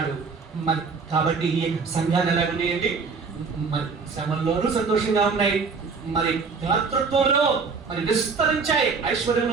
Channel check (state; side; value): quieter; left; 5.0 dB